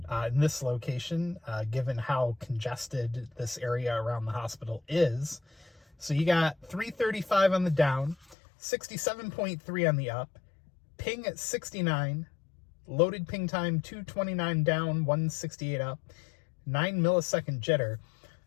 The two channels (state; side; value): drops out; right; at 8.3 s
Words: In this location, given how congested this area around the hospital is. So you got 335 on the down, 67.3 on the up, ping at 69, loaded ping time 229 down, 168 up, 9 millisecond jitter.